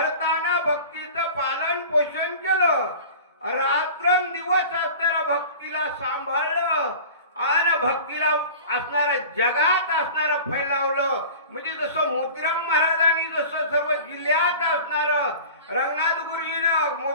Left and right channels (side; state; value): both; inverted; correlation -0.39